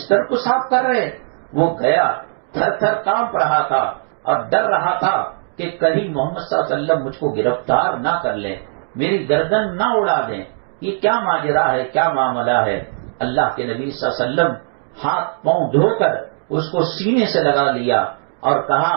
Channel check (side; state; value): left; silent; digital silence